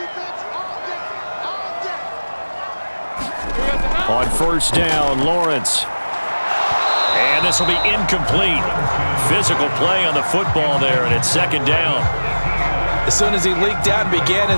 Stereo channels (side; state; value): both; inverted; correlation -1.00